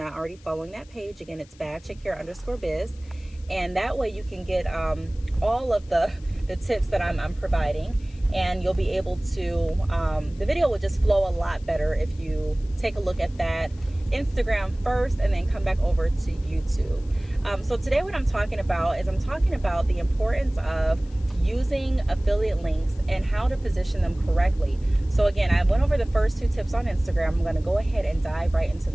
already following that page. Again, it's @badchickhair_biz. And that way you can get all of the tips that I'm providing, and you'll be able to, the video will just flow a lot better if you take a look at that Instagram first and then come back over to YouTube. So today what I'm talking about is the importance of using affiliate links and how to position them correctly. So again, I went over the first two tips on Instagram. I'm going to go ahead and dive right into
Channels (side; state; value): left; noise; hiss, 28 dB below the sound